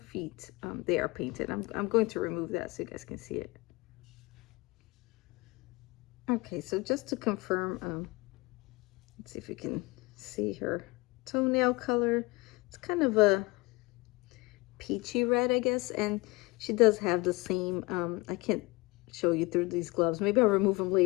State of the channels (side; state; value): right; quieter; 23.7 dB